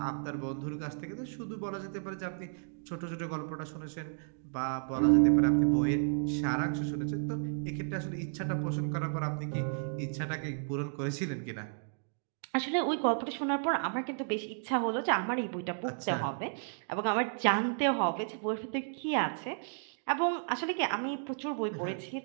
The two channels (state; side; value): silent; left; digital silence